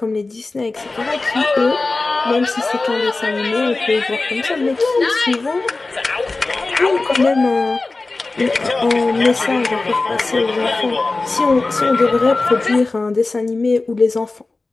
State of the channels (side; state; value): right; quieter; 3.4 dB